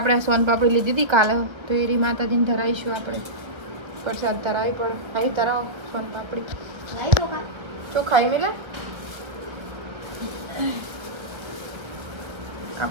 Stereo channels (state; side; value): late; left; 1.5 ms